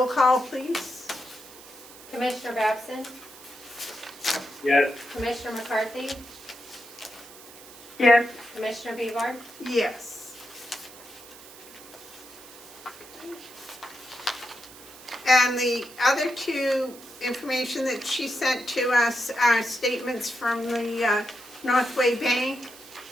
call, please. Commissioner Babson? Yes. Commissioner McCarthy? Yes. Commissioner Bevard? Yes. And the other two information that she sent to us are statements from the Northway Bank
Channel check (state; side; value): noise; right; hiss, 18 dB below the sound